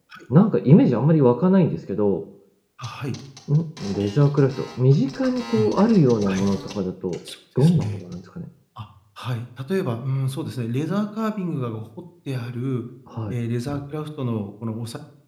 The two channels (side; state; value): both; identical; correlation 1.00